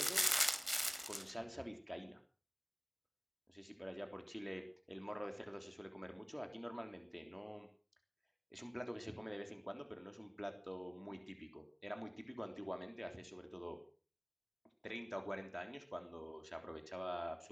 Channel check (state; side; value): identical; both; correlation 1.00